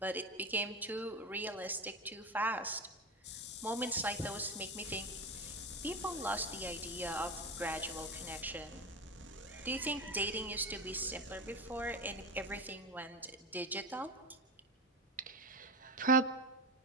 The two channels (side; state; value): both; normal; correlation 0.22